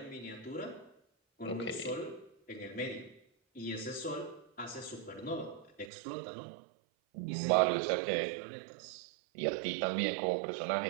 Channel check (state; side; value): drops out; left; at 5.9 s